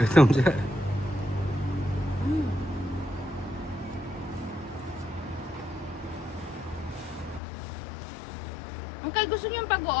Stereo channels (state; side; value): drops out; right; at 7.4 s